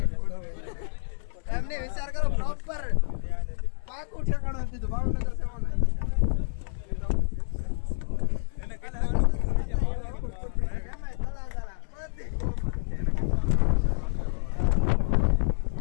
એમને વિચાર કરો પ્રોપર પાકું ઠેકાણું આપી દીધું ભાવનગર છે મને એને કેટલા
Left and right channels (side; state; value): right; silent; 59 dB below the other